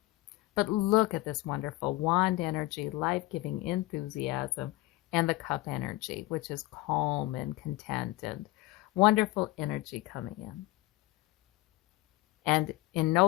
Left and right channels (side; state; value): right; quieter; 18.8 dB